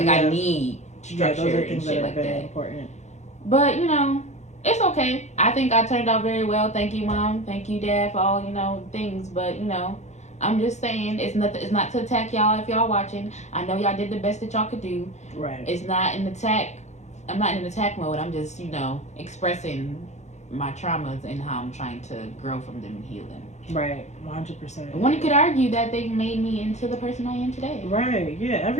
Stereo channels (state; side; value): late; right; 0.33 ms